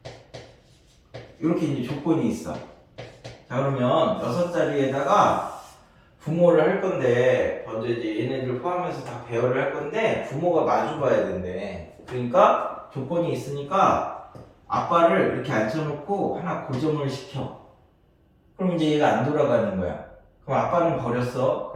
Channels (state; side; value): identical; both; correlation 1.00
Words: 이렇게 이제 조건이 있어. 자, 그러면 6자리에다가 부모를 할 건데 먼저 이제 얘네들 포함해서 다 배열을 할 건데 부모가 마주 봐야 된대. 그러니까 조건이 있으니까 아빠를 이렇게 앉혀놓고 하나 고정을 시켜. 그럼 이제 얘가 안 돌아가는 거야. 그럼 아빠는 버렸어.